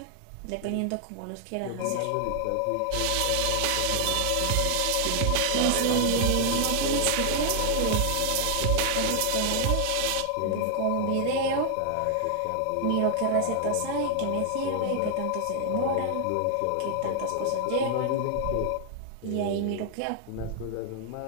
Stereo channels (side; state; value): both; different; correlation 0.00